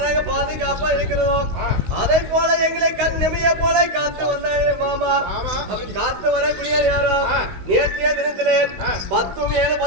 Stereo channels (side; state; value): left; late; 16 ms